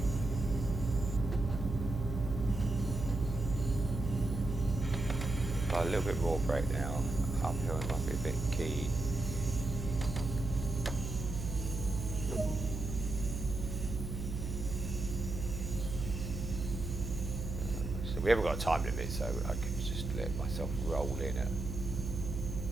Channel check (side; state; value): right; noise; hum, 5 dB below the sound